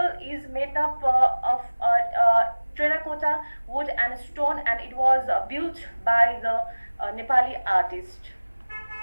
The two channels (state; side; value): inverted; both; correlation -1.00